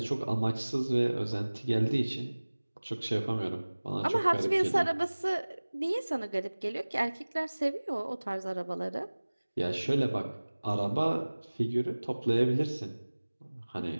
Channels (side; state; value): both; inverted; correlation -1.00